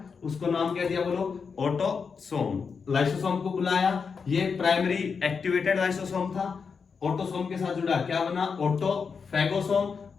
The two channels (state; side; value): quieter; right; 5.6 dB